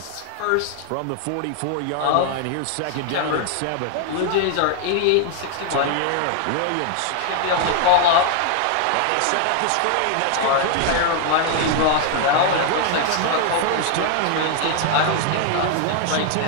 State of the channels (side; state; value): both; different; correlation 0.00